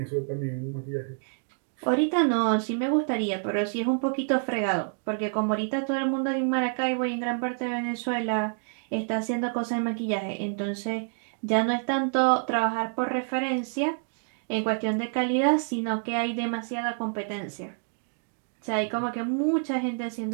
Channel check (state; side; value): silent; left; 60 dB below the other